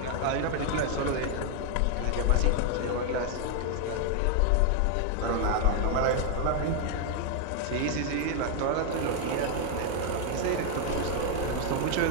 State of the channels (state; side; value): different; both; correlation 0.00